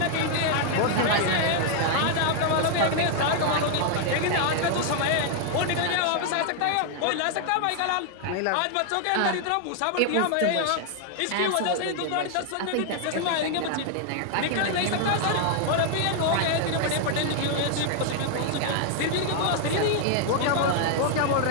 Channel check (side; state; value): both; different; correlation 0.00